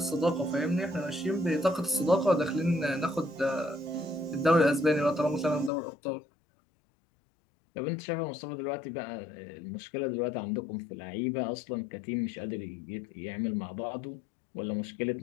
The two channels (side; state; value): right; drops out; at 5.7 s